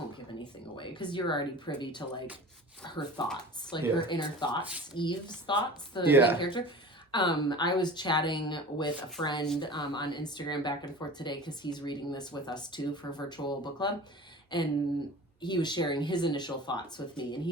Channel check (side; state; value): both; normal; correlation 0.38